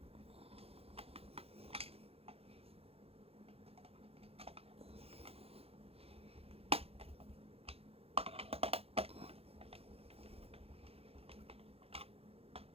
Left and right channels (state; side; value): late; left; 0.29 ms